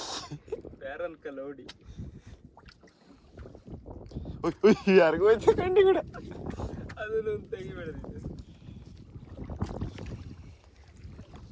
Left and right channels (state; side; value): identical; both; correlation 1.00